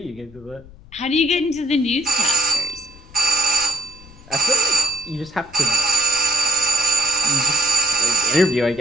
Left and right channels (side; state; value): left; noise; rumble, 22 dB below the sound